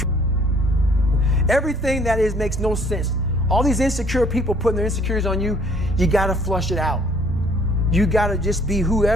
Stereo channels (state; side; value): normal; both; correlation 0.59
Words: Everything that is makes no sense. All these insecure people putting their insecurities on you, you got to flush it out. You got to just be